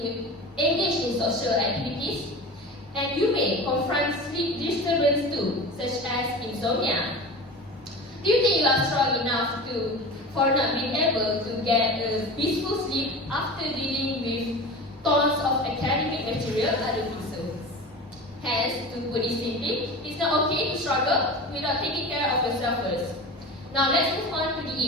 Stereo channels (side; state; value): both; normal; correlation 0.33